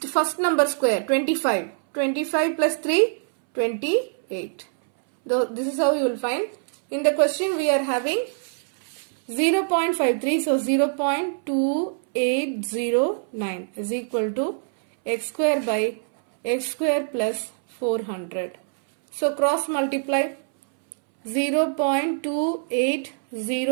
first number square. 25. 25 plus 3, 28. This is how you will find. In the question we are having 0.53, so 0.2809 is equal to x square by x square plus 400. So cross multiply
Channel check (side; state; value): left; silent; 63 dB below the other